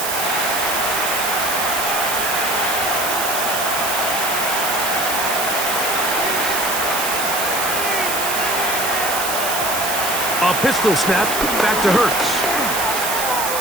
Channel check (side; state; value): right; noise; hiss, 2 dB below the sound